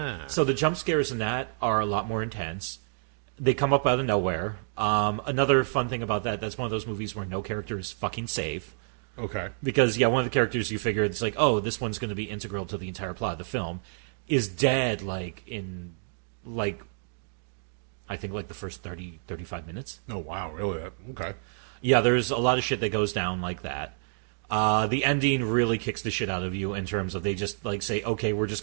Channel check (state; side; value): silent; left; digital silence